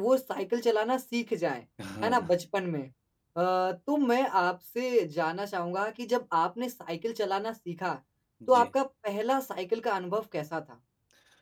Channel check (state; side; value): identical; both; correlation 1.00